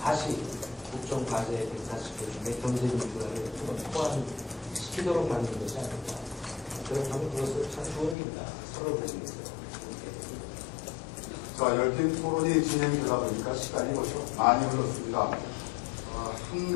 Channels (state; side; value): drops out; right; at 8.2 s